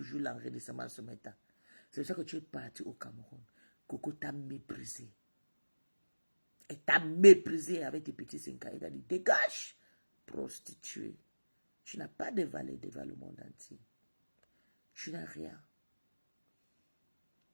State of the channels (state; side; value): inverted; both; correlation -1.00